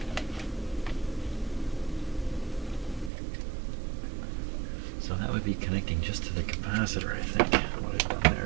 So that would be connecting just to the capacitor, I think. What I've done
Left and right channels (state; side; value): drops out; left; at 3.1 s